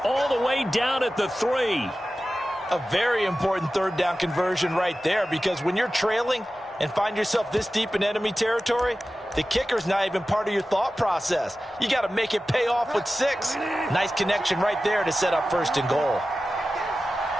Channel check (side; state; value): both; normal; correlation 0.95